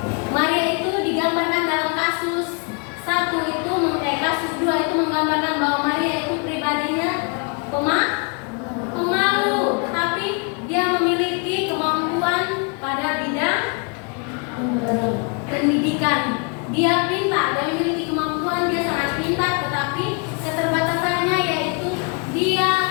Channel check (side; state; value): right; quieter; 35.7 dB